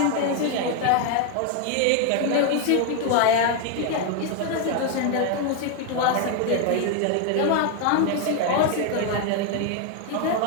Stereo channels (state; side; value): different; both; correlation 0.00